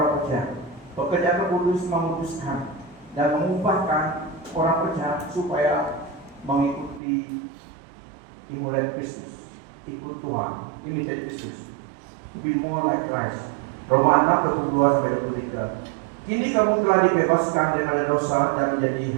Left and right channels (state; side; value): drops out; left; at 7.0 s